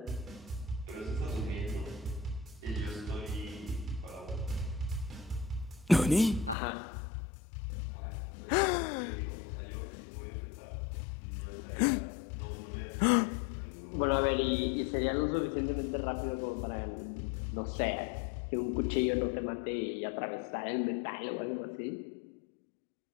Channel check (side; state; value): right; drops out; at 6.6 s